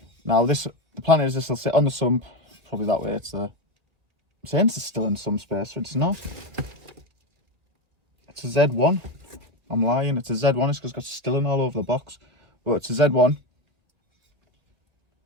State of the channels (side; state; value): left; late; 2.1 ms